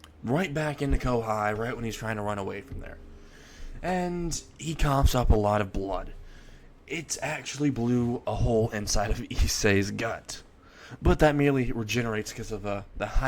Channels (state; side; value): identical; both; correlation 1.00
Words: right back into Kohai right when he's trying to run away from there. And he coughs up a lot of blood. It actually blew a hole inside of Issei's gut. But that merely regenerates because of the